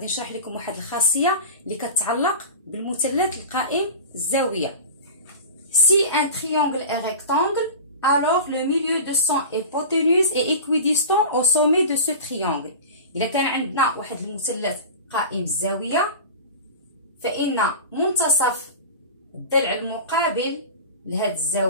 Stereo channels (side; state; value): both; inverted; correlation -0.32